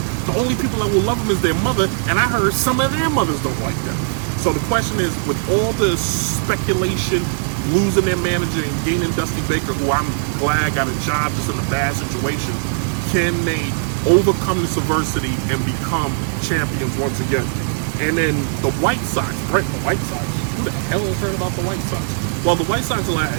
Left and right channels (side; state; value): left; silent; digital silence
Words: The only people that will love them is their mother, and I heard some of their mothers don't like them. So the question is, with all the speculation, losing their manager and gaining Dusty Baker, who I'm glad got a job just in a bad situation, can they overcome this adversity and become champions once again? And then the White Sox, right? The White Sox. Who the hell has heard about the White Sox? Well, the White Sox